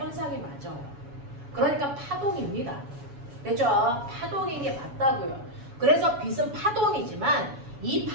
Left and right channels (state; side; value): late; left; 7.1 ms